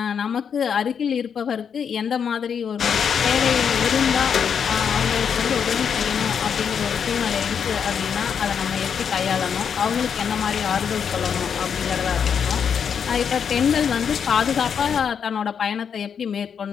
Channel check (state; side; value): quieter; right; 7.2 dB